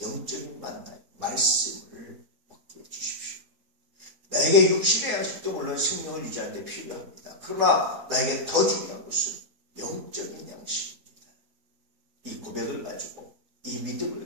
영적인 만나 말씀을 먹게 해주십시오. 나에게 육신의 양식도 물론 생명을 유지하는 데 필요합니다. 그러나 나에게 더 중요한 것은 영적인 양식입니다. 이 고백을 가지고 이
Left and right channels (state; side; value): late; left; 3.9 ms